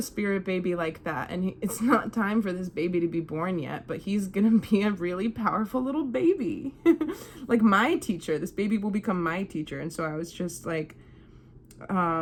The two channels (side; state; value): both; identical; correlation 1.00